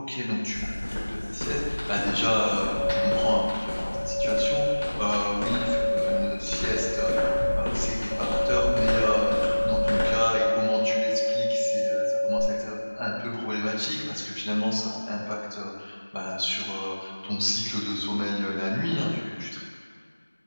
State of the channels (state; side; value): inverted; both; correlation -1.00